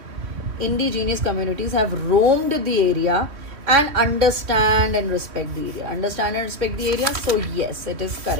have roamed the area and understand and respect the area. Understand and respect the area. So yes, it is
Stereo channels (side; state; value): left; late; 3.2 ms